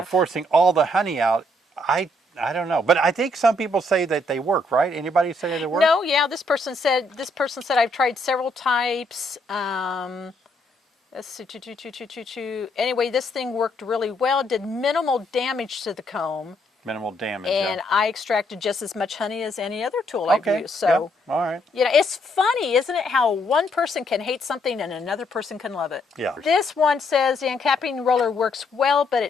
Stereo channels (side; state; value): both; normal; correlation 0.72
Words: forcing all the honey out. I don't know, but I think some people say that they work, right? Anybody say that they work? No, yeah. This person said I've tried several types. Let's see, anyway, this thing worked really well. Did minimal damage to the comb. Minimal damage. And I extracted just as much honey as any other tool I've used. So, all right. It's funny, isn't it, how one person can hate something and another person can love it. Yeah. This one says the uncapping roller works well, but